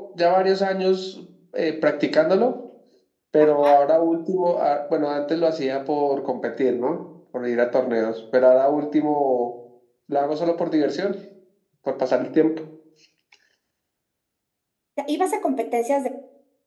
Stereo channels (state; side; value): identical; both; correlation 1.00